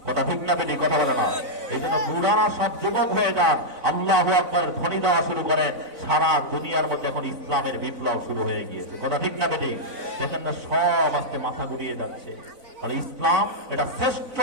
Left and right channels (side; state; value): left; late; 4.0 ms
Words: কথা ঠিক না বেটি? কথা বলে না। এই জন্য বুড়ারা সব যুবক হয়ে যান, আল্লাহু আকবার ধ্বনি দেওয়া শুরু করেন। সারা দুনিয়ার মধ্যে এখন ইসলামের বিপ্লব শুরু হয়ে গিয়েছে। কথা ঠিক না বেটি? দেখেন না, সব আস্তে মাথা ঘুরিয়ে যাচ্ছে। আর ইসলাম এটা শ্রেষ্ঠ,